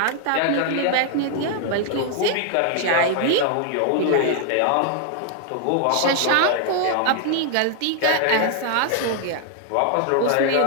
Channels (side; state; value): both; different; correlation 0.00